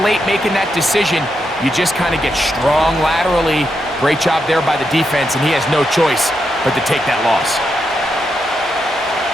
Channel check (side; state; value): both; normal; correlation 0.83